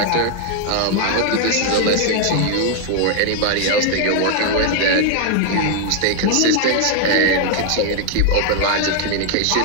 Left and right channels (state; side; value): different; both; correlation 0.00